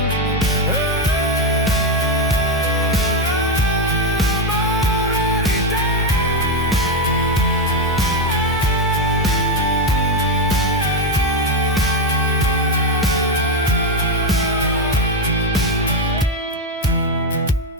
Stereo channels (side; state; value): both; normal; correlation 0.08